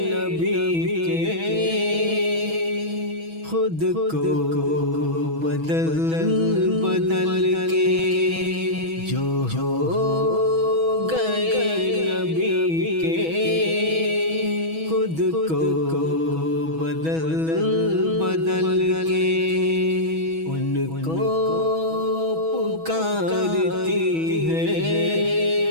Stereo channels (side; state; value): left; late; 6.2 ms